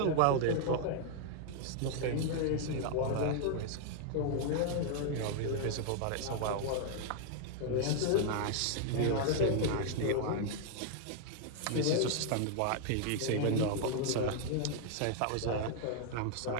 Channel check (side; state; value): both; different; correlation 0.00